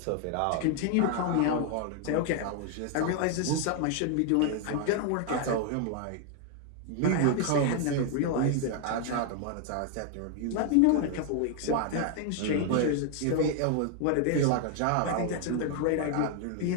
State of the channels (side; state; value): both; different; correlation 0.00